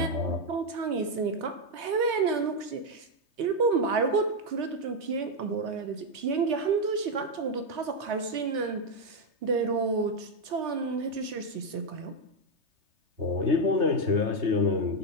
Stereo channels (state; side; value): late; left; 3.3 ms